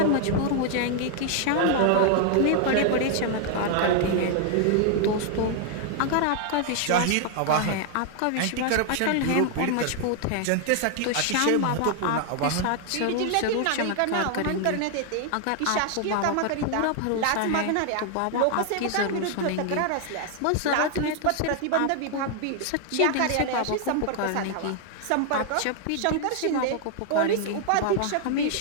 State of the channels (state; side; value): different; both; correlation 0.00